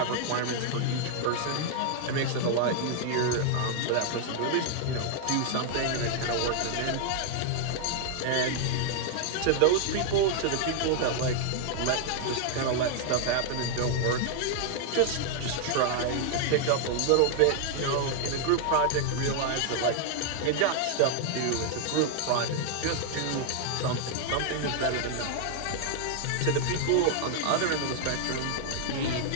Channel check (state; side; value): different; both; correlation 0.00